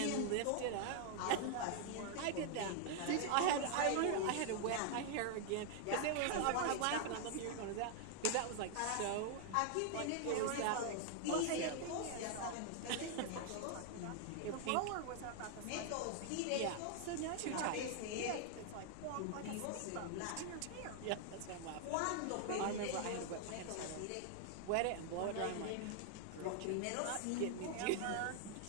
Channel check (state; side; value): different; both; correlation 0.00